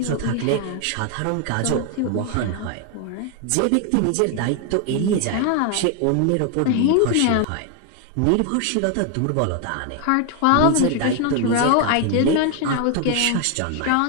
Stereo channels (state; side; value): different; both; correlation 0.01